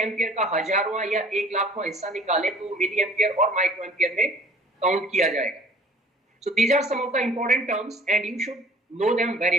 का हजारवां या 1 लाखवां हिस्सा निकालें तो मिली एम्पियर और माइक्रो एम्पियर में काउंट किया जाएगा। So these are some of the important terms and you should know them very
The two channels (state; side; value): normal; both; correlation 0.52